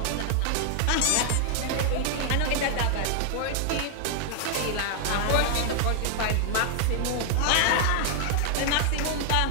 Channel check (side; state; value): both; different; correlation 0.00